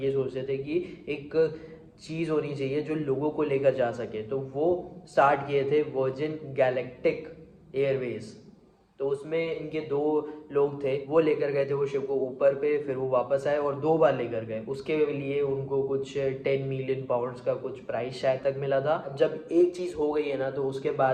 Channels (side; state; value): both; identical; correlation 1.00